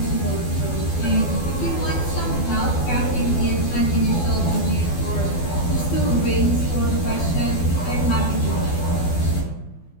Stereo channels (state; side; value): late; right; 12 ms